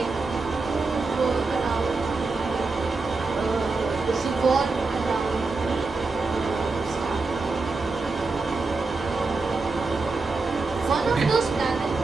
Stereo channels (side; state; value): left; quieter; 3.8 dB